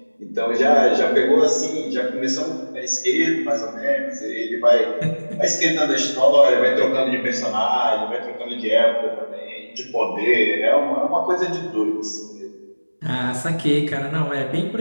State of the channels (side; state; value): both; inverted; correlation -1.00